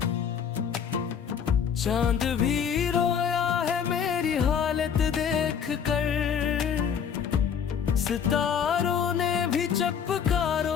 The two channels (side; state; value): right; quieter; 7.5 dB